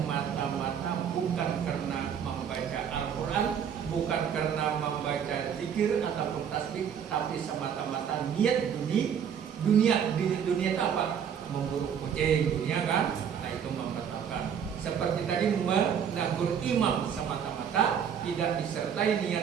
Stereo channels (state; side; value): quieter; left; 8.0 dB